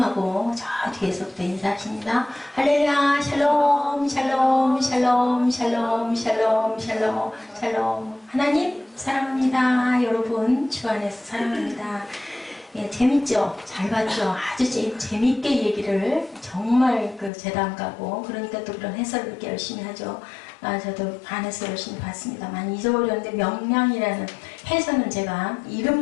하고 저 뒤에서부터 인사하십니다. 할렐루야 샬롬 샬롬 샬롬 샬롬 샬롬 샬롬 샬롬. 하나님 사랑합니다. 여러분 주 안에서 사랑합니다. 예, 재밌죠? 잘 봤죠? 아주 재밌게 얘기를 정말 재단 가고 그러니까 또 그런 해설을 이렇게 열심히 하죠. 저도 안에서 열심히 봤습니다. 많이 잊어버렸는데 명량이라는 해설은 제가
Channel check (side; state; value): right; drops out; at 17.3 s